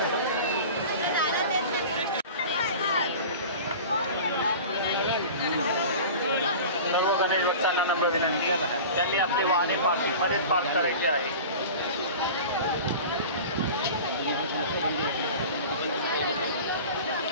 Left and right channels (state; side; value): inverted; both; correlation -0.36